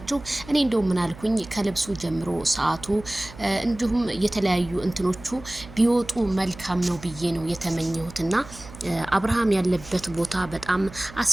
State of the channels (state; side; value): noise; right; hum, 17 dB below the sound